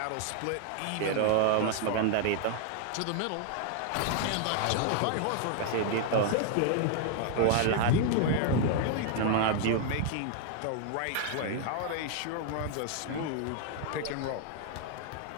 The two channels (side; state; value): both; different; correlation 0.00